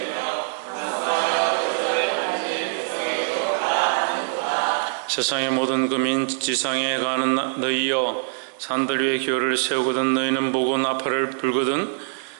세상의 모든 금인 지상에 가는 너희여, 산들 위에 기호를 세우거든 너희는 보고 나팔을 불거든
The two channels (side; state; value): left; silent; digital silence